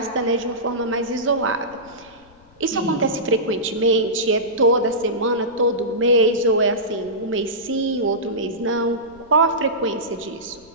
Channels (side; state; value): left; noise; rumble, 27 dB below the sound